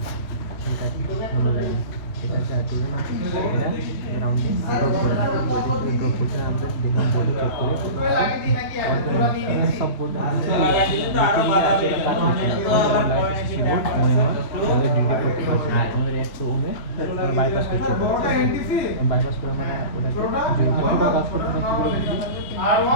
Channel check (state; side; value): late; right; 2.7 ms